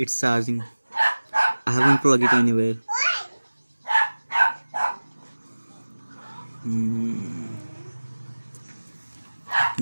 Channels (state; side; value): inverted; both; correlation -1.00